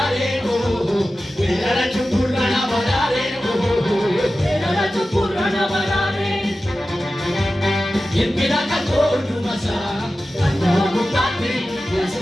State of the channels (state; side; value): normal; both; correlation 0.94